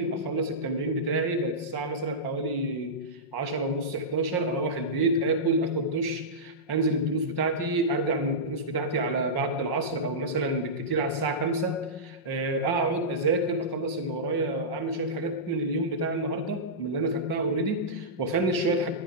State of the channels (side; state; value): right; late; 5.6 ms